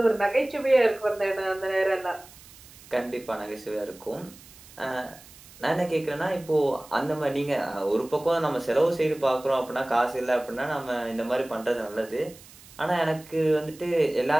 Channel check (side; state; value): right; noise; hiss, 21 dB below the sound